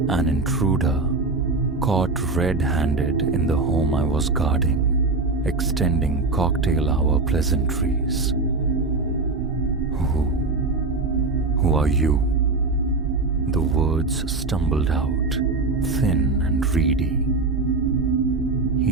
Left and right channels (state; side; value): quieter; left; 3.6 dB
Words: An intruder, caught red-handed in the home I was guarding, extending cocktail hour pleasantries. Who are you?" The words stumbled out, thin and reedy.